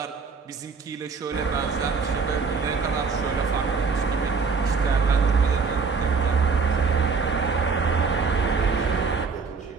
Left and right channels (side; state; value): left; quieter; 5.0 dB